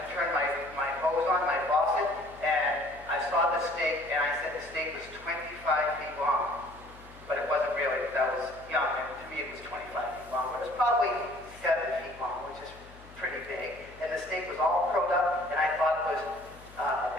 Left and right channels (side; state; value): left; noise; hum, 20 dB below the sound